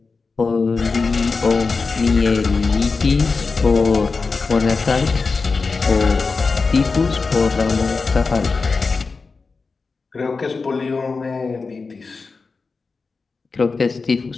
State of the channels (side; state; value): right; quieter; 4.4 dB